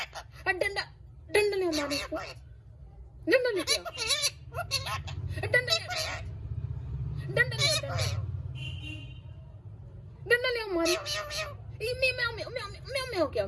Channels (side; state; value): both; identical; correlation 1.00